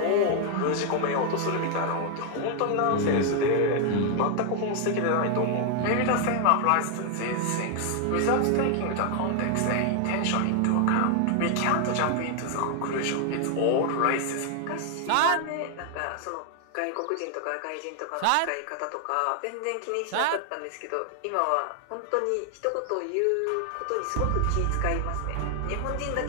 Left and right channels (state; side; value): different; both; correlation 0.00